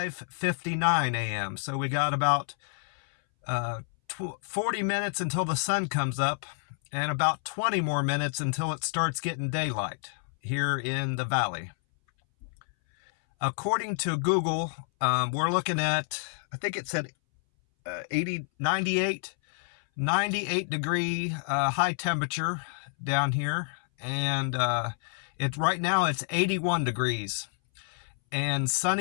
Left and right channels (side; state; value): right; silent; 59 dB below the other